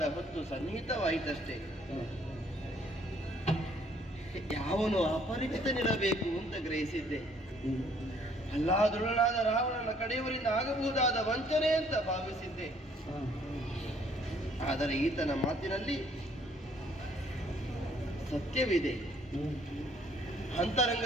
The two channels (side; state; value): both; normal; correlation 0.62